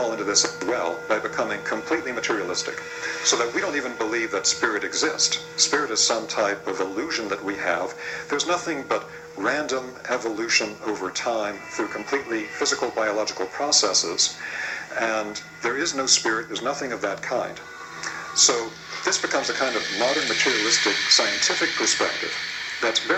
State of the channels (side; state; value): both; identical; correlation 1.00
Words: into this as well by becoming completely materialistic, so that we don't even believe that spirit exists. Spirit is some type of illusion that we have. There's nothing but random evolution over time through completely physical biological processes, and there is no spirit, there's nothing of that kind. So this becomes a kind of modern materialistic scientific perspective that's